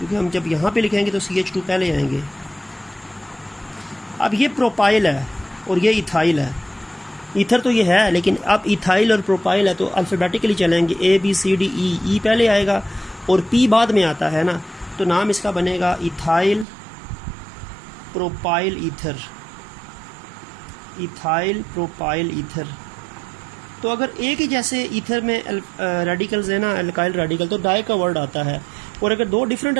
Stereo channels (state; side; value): drops out; left; at 16.7 s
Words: हम जब यहाँ पे लिखेंगे तो CH2 पहले आएंगे। अब ये प्रोपाइल है और ये इथाइल है, ईथर तो ये है, लेकिन अब इथाइल और प्रोपाइल है तो अल्फ़ाबेटिकली चलेंगे, ABCD E पहले आएगा और P बाद में आता है ना, तो नाम इसका बनेगा ethyl propyl ether, ethyl propyl ether. तो अगर एक ही जैसे ईथर में रेडिकल्स है ना, अल्काइल रेडिकल, तो डाई का वर्ड आता है। और अगर दो डिफरेंट